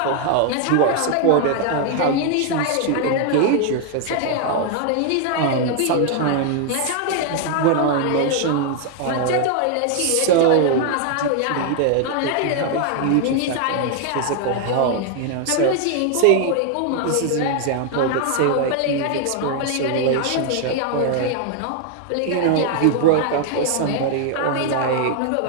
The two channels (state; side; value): different; both; correlation 0.00